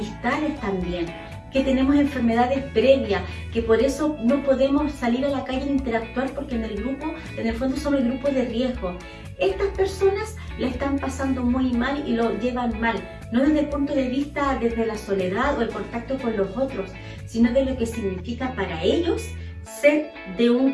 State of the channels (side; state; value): both; identical; correlation 1.00